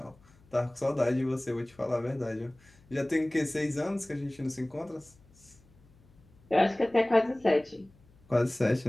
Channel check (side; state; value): left; noise; hum, 28 dB below the sound